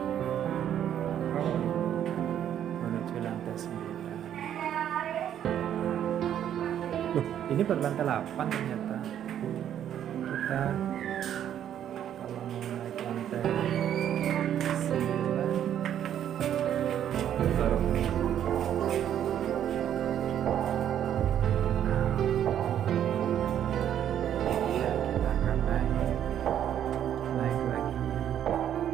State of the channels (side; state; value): left; quieter; 10.2 dB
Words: Loh, ini baru lantai 8 ternyata. Kita kalau mau naik lantai 9 baru ya, kita akan naik lagi.